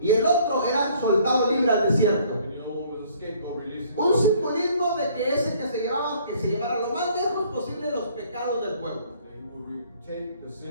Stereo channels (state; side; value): inverted; both; correlation -0.59